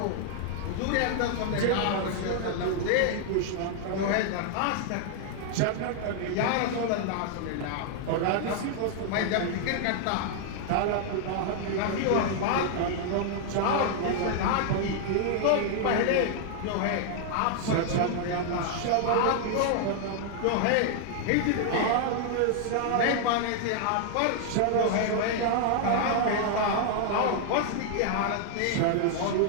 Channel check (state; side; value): different; both; correlation 0.00